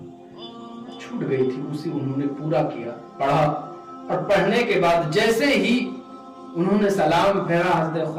छूट गई थी, उसी उन्होंने पूरा किया, पढ़ा, और पढ़ने के बाद जैसे ही उन्होंने सलाम फेरा, हज़रत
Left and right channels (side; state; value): both; identical; correlation 1.00